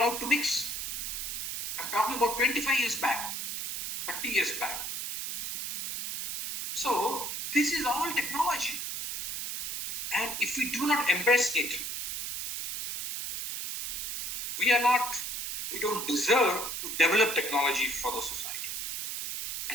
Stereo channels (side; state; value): right; noise; hiss, 4 dB below the sound